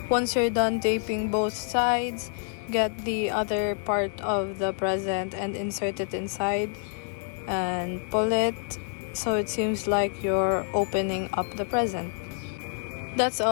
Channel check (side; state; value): right; silent; 60 dB below the other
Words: Once you're done taping both sides, get the other part of the present and insert it inside and pull it so it seems like you're opening up the present. That's